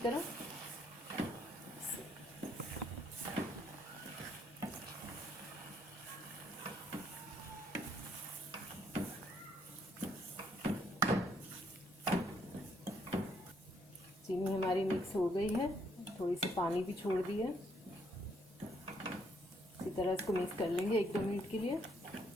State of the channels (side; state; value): both; normal; correlation 0.70